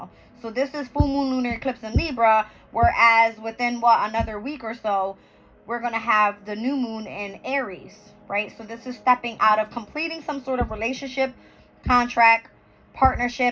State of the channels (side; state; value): both; identical; correlation 1.00